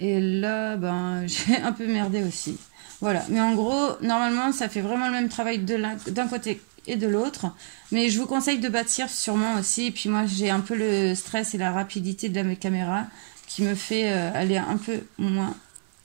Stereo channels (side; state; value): left; silent; 58 dB below the other